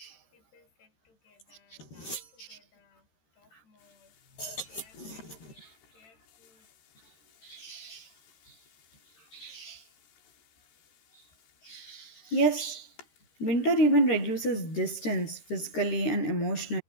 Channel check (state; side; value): late; right; 13 ms